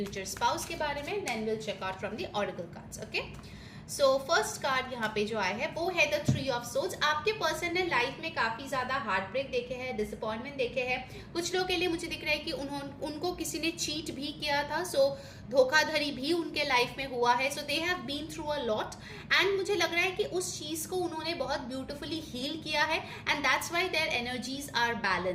spouse के बारे में, then we'll check out from the oracle cards, okay। So first card यहाँ पे जो आया है वो है द 3 ऑफ सोर्ड्स। आपके पर्सन ने लाइफ में काफी ज्यादा हार्ट ब्रेक देखे हैं, डिसअपॉइंटमेंट देखे हैं। कुछ लोग के लिए मुझे दिख रहा है कि उनको किसी ने चीट भी किया था, सो धोखाधड़ी भी उनके लाइफ में हुआ है, so they have been through a lot. And मुझे लग रहा है कि उस चीज को उन्होंने बहुत ब्यूटिफुली हील किया है, and that's why their energies are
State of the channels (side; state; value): both; identical; correlation 1.00